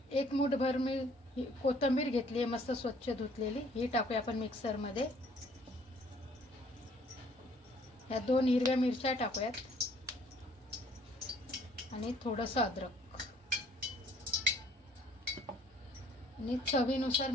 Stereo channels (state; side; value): normal; both; correlation 0.60